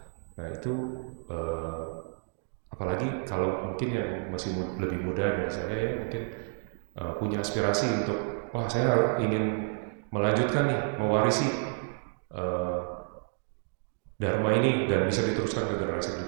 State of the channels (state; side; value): silent; left; 58 dB below the other